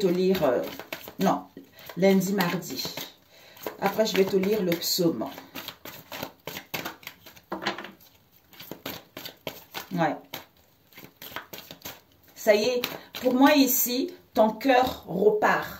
lire... non, lundi, mardi. Après, je vais te lire le psaume. Ouais. Ça y est, pour moi ici, ton cœur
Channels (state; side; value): identical; both; correlation 1.00